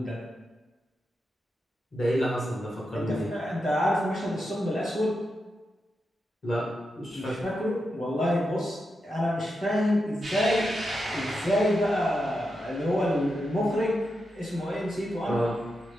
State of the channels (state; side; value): normal; both; correlation 0.87